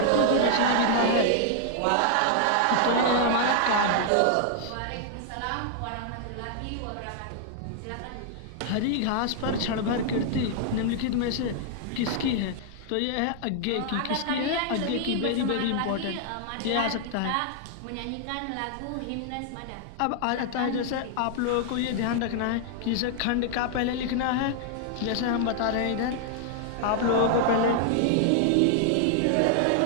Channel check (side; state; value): both; different; correlation -0.01